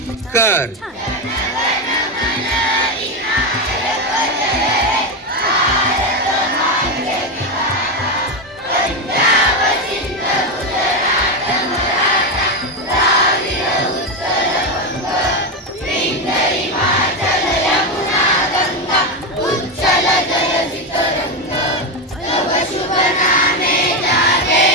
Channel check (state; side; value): normal; both; correlation 0.11